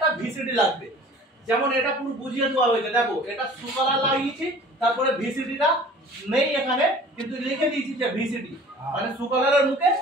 ভিসিডি লাগবে, যেমন এটা পুরো বুঝিয়ে দেওয়া হয়েছে। দেখো, এটা সুকলার লাগিয়েছি, তারপরে ভিসিডিটা নেই এখানে, কিন্তু লিখে দিয়েছি যে ভিসিডি, মানে সুকলারের মুখে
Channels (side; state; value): both; normal; correlation 0.47